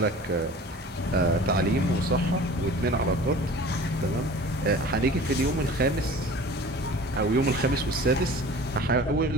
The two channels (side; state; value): both; normal; correlation 0.42